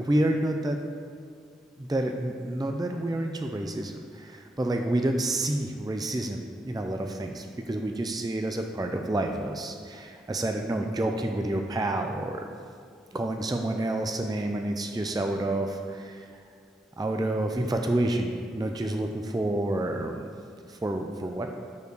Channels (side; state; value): both; normal; correlation 0.82